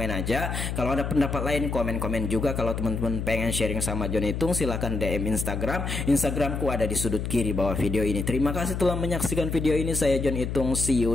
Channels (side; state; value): left; noise; hum, 3 dB below the sound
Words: aja. Kalau ada pendapat lain komen-komen juga. Kalau teman-teman pengen sharing sama John Itung silahkan DM Instagram. Instagramku ada di sudut kiri bawah video ini. Terima kasih telah menyaksikan video ini. Saya John Itung. See you